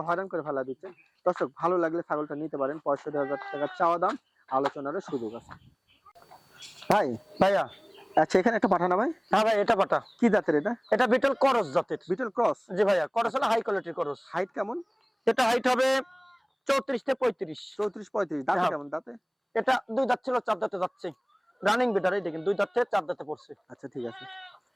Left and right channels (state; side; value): identical; both; correlation 1.00